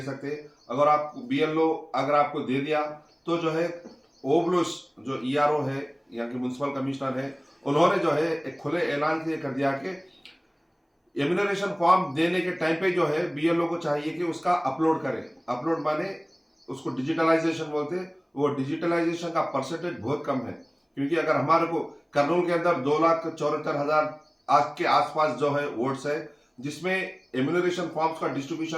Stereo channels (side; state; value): both; identical; correlation 1.00